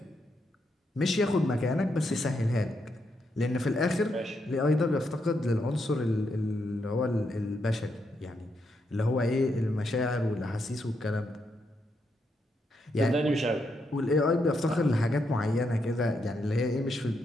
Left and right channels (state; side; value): normal; both; correlation 0.80